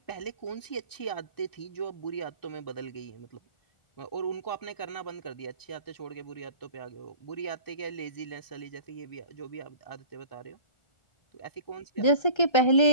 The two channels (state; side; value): late; right; 1.3 ms